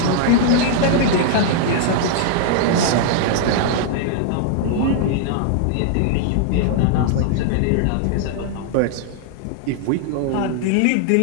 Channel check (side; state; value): both; different; correlation -0.01